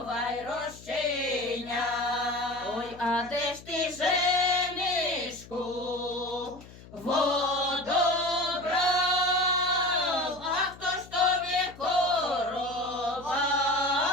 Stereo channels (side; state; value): left; noise; hum, 19 dB below the sound